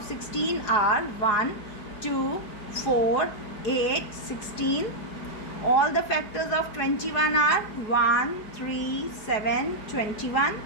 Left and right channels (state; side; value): late; right; 4.8 ms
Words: 16 are 1, 2, 4, 8, 16. All the factors of 21 are 1, 3, 7, 21.